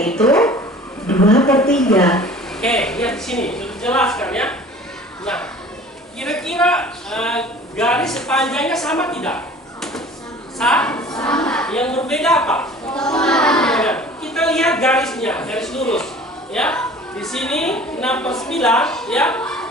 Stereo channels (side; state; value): both; normal; correlation 0.45